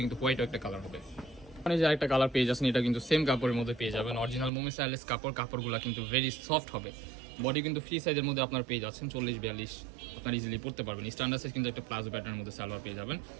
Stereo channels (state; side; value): drops out; left; at 4.5 s